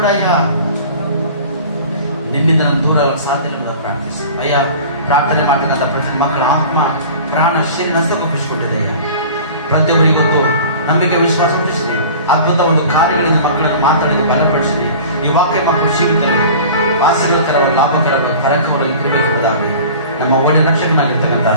ಅಯ್ಯ ನಿನ್ನಿಂದ ನಾನು ದೂರ ಸಾಧ್ಯ ಪ್ರಾರ್ಥಿಸು. ಅಯ್ಯ ಪ್ರಾರ್ಥನೆ ಮಾಡತಕ್ಕಂಥ ಪ್ರತಿ ಮಕ್ಕಳ ಆತ್ಮ ಪ್ರಾಣ ಶರೀರ ನಷ್ಟಪಡಿಸಿಕೊಂಡಿದೆ. ಪ್ರತಿಯೊಬ್ಬರಿಗೆ ಗೊತ್ತು ನಂಬಿಕೆ ವಿಶ್ವಾಸ ಹುಟ್ಟಿಸಿದೆ. ಅದ್ಭುತ ಒಂದು ಕಾರ್ಯಗಳಿಂದ ಮಕ್ಕಳನ್ನು ಮಾತಾಡಿದ ಬಲಪಡಿಸಿದೆ. ಈ ವಾಕ್ಯ ಮಕ್ಕಳು ಜೀವಿತವೆ ಆಸಕ್ತಿಕರವಾದ ಲಾಭಕರವಾದ ಕರಕವಾಗಿ ಇರಬೇಕೆಂಬುದಾಗಿ ನಮ್ಮ ಒಳ್ಳೆಯ ರಕ್ಷಕನಾಗಿರ್ತಕ್ಕಂಥ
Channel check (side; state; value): both; inverted; correlation -0.41